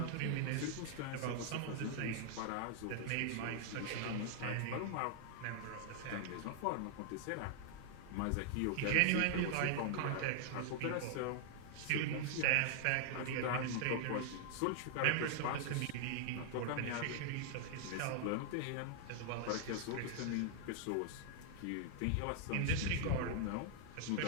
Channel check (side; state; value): both; different; correlation 0.00